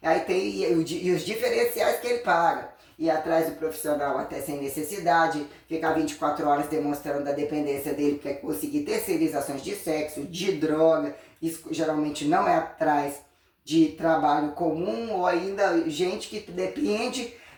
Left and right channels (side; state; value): both; identical; correlation 1.00